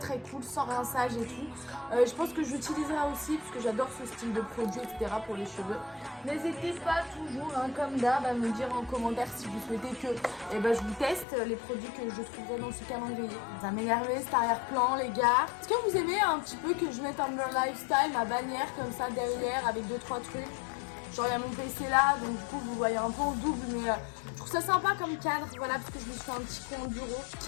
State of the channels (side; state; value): right; drops out; at 11.2 s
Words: cool, sans rinçage et tout. Je pense que j'utiliserai aussi parce que j'adore ce style de produit etc pour les cheveux. N'hésitez pas toujours comme d'hab à me dire en commentaire si vous souhaitez que je vous teste les produits que je trouverai dans ce calendrier. Ça m'énervait cet arrière-plan les gars. Est-ce que vous aimez un petit peu que je mette Amber Lifestyle, ma bannière comme ça derrière avec 2-3 trucs? Genre il y a mon PC là, donc du coup vous voyez un peu en double, mais je trouve ça sympa comme cadre, voilà, parce que je me suis fait un petit coin au bureau.